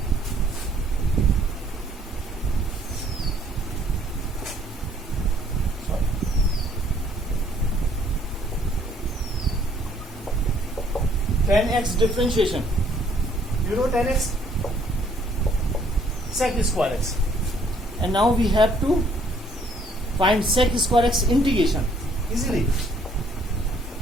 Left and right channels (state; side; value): normal; both; correlation 0.63